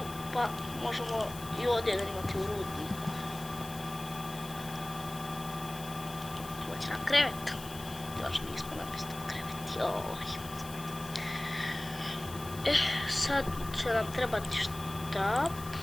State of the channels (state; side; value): noise; left; hiss, 14 dB below the sound